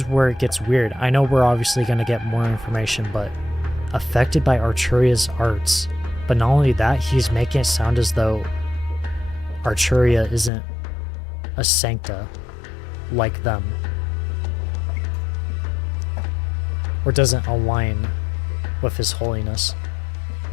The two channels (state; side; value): drops out; right; at 10.5 s